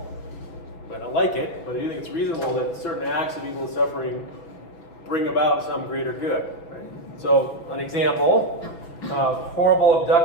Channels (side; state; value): right; late; 6.0 ms